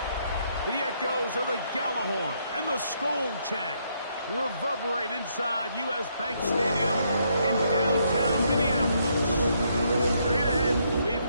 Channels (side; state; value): both; inverted; correlation -0.74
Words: The echoes of the Gallahorn and the Skol chant reverberate inside U.S. Bank Stadium in downtown Minneapolis. Straight ahead, we've